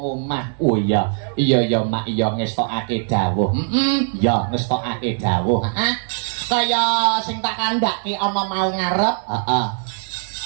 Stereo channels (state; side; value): silent; left; digital silence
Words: Oh iya. Iya ya Mak, iya ngestokake dawuh. Ya ngestokake dawuh. Kaya sing tak kandhake ana mau ngarep. Heeh.